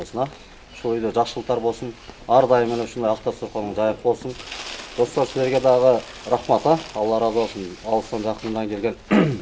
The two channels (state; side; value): identical; both; correlation 1.00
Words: Ушул үйдө жақшылықтар болсын, ар дайым эле ушундай акта сорконуң жайып болсын. Dostlar sizlerge dağı rahmat, Allah razı olsun. Alıstan жақындан келген.